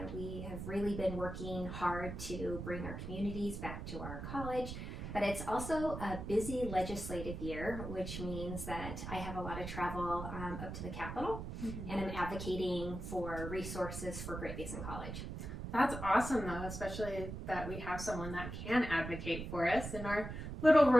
We have really been working hard to bring our communities back to our college, but it's also a busy legislative year, which means that I have a lot of travel up to the Capitol, and I'm advocating for resources for Great Basin College. That's awesome, though, especially that we have someone that can advocate for us in our little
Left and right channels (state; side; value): noise; right; rumble, 7 dB below the sound